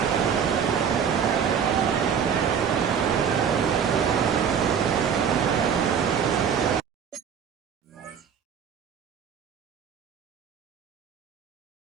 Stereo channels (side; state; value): left; quieter; 7.4 dB